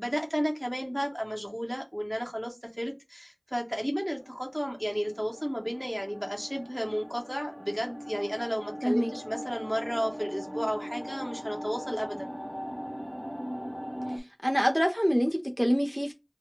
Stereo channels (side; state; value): both; identical; correlation 1.00